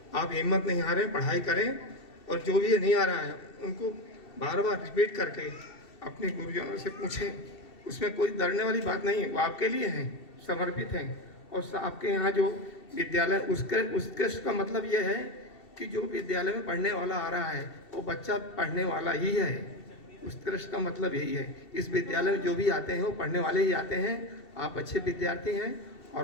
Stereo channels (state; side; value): late; right; 2.7 ms